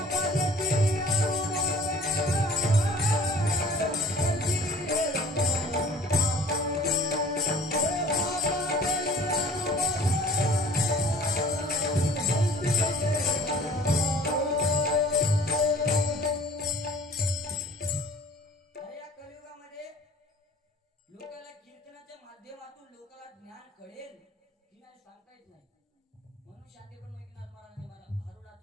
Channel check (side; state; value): both; normal; correlation 0.49